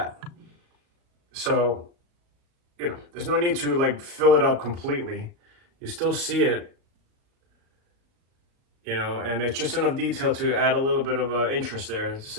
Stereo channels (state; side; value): late; left; 37 ms